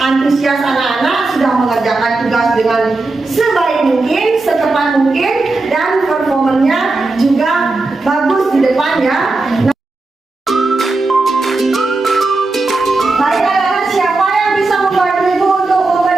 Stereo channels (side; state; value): left; quieter; 3.3 dB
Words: antusias anak-anak sudah mengerjakan tugas dengan sebaik mungkin, secepat mungkin, dan performanya juga bagus di depan ya. Baik anak-anak, siapa yang bisa membantu ibu untuk